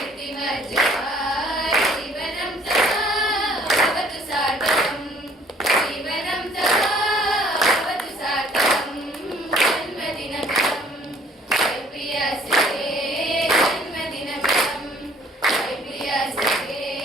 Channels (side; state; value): both; normal; correlation 0.58